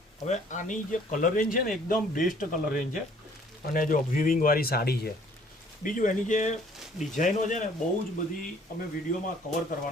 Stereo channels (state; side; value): normal; both; correlation 0.58